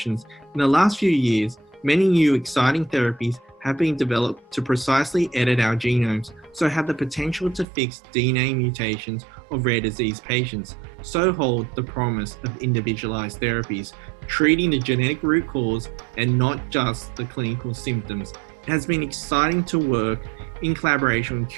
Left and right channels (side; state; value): left; drops out; at 7.7 s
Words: In the last few years, many new exciting therapies have been developed to precisely edit our genomes, so have the potential to fix DNA mutations of rare disease patients. So hold the promise of individualized therapies, treating the genetic root cause and not just the clinical symptoms. It has been exciting to work in collaboration with